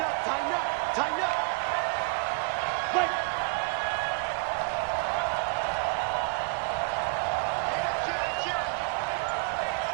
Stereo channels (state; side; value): quieter; left; 34.3 dB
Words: up, tighten up, tighten up. Wait.